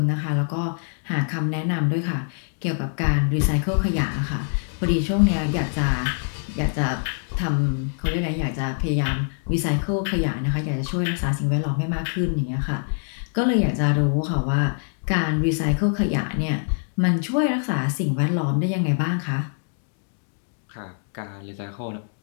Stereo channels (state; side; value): silent; right; digital silence